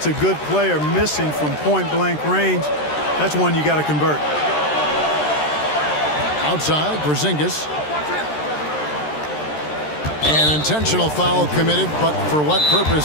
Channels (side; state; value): right; late; 13 ms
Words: a good player missing from point-blank range. That's one you got to convert. Outside, Porzingis. An intentional foul committed, but for what